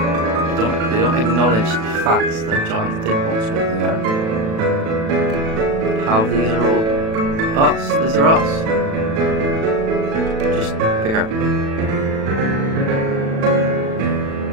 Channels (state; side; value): late; left; 36 ms